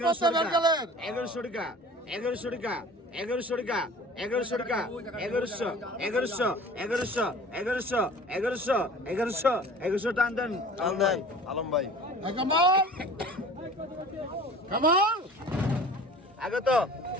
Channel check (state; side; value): normal; both; correlation 0.43